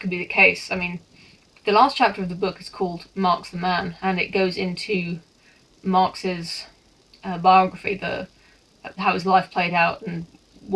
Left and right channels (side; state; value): both; identical; correlation 1.00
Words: be the case. I mean, the last chapter of the book is called Marx the Man, and it goes into Marx's biography, how his life played out and